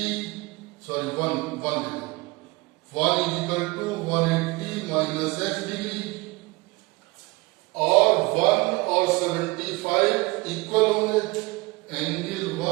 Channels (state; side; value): quieter; left; 23.9 dB